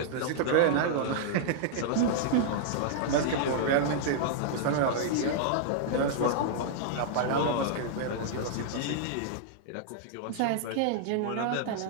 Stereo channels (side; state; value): both; different; correlation -0.01